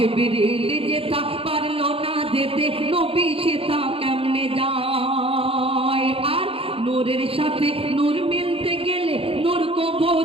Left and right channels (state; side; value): late; left; 0.27 ms